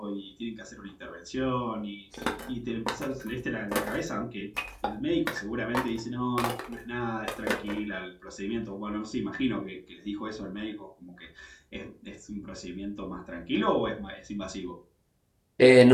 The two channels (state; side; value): identical; both; correlation 1.00